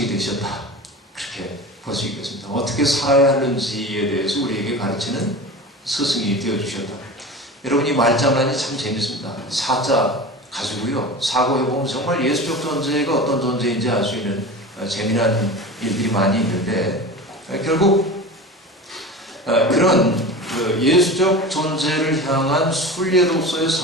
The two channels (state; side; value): normal; both; correlation 0.32